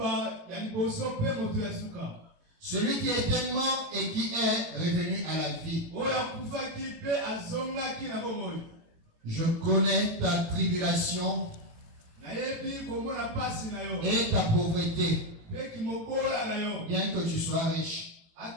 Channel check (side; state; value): left; late; 18 ms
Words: Celui qui était mort et qui est revenu à la vie. Je connais ta tribulation et ta pauvreté, bien que tu sois riche.